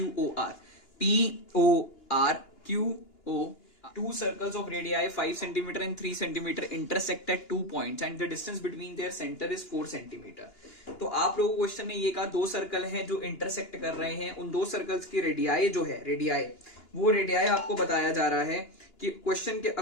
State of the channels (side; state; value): right; late; 2.9 ms